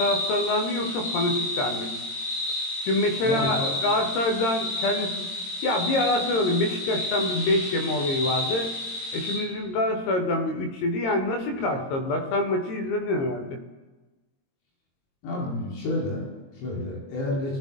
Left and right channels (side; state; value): right; late; 22 ms